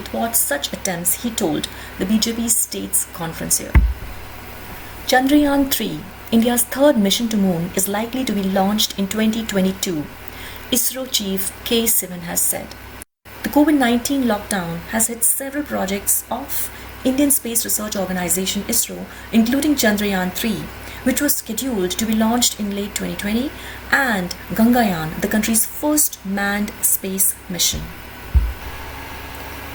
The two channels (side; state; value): both; identical; correlation 1.00